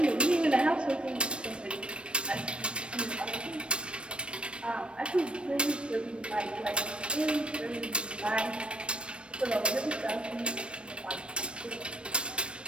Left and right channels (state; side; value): late; left; 0.058 ms